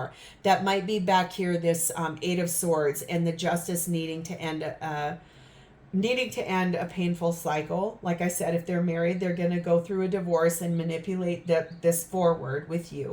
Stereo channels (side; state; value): both; identical; correlation 1.00